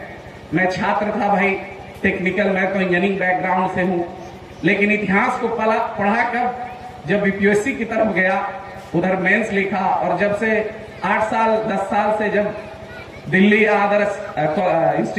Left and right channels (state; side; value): identical; both; correlation 1.00